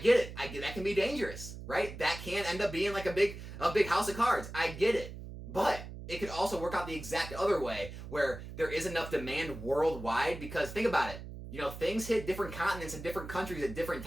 it. That can be dangerous, right? That can end up being like a big house of cards. I get it. But it could also work out the exact other way where there is enough demand worldwide, because think about it. Things hit different continents and different countries at different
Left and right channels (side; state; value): right; noise; hum, 11 dB below the sound